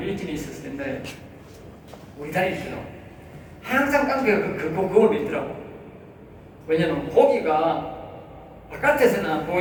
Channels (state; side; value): identical; both; correlation 1.00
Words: 일진이 있었을 텐데, 우리 다닐 때도 항상 깡패가 그걸 믿더라고. 왜냐면 고기가 바깥에서는